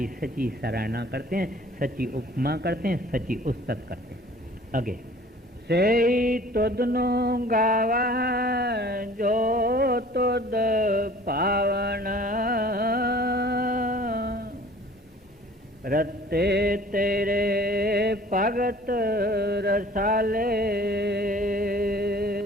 सच्ची सराहना करते हैं, सच्ची उपमा करते हैं, सच्ची उस्तत करते हैं। आगे से तुदनो गावा जो तुद पावन, रत्ते तेरे भगत रसाले,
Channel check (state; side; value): normal; both; correlation 0.49